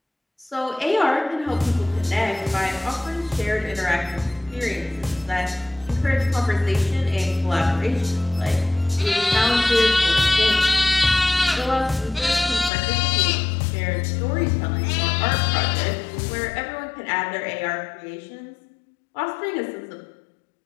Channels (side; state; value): right; drops out; at 12.7 s